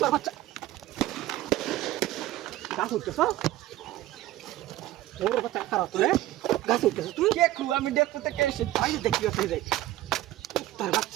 বাচ্চা গাছ উঠতেছ ওর বাচ্চা খারাপ তোরে গাছ উঠতেছ তুই দেখু আমি দেখতে থেকে এসে তাই দেখি আসলে যাই তোর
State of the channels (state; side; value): quieter; left; 15.2 dB